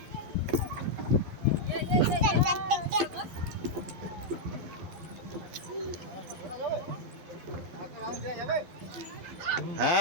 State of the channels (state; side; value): late; left; 11 ms